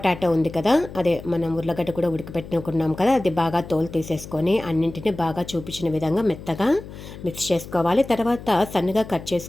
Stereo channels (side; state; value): left; noise; hum, 14 dB below the sound